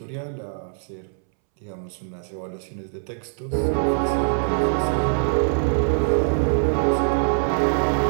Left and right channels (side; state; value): left; silent; 63 dB below the other